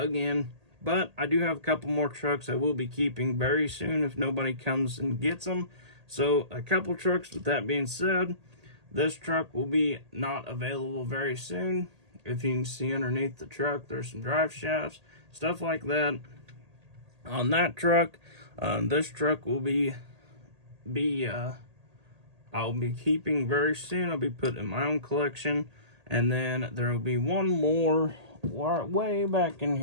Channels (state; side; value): late; left; 1.8 ms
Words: But I do have a couple more trucks I will be keeping very soon if nobody comes and gets them. So a couple trucks. With that being said, this truck will be not available very soon. If you can see underneath the truck, there's some drive shafts, stuff like that on that truck. This truck will I'll be keeping very soon. I'll be putting in my own collection. And then there will be one more way back in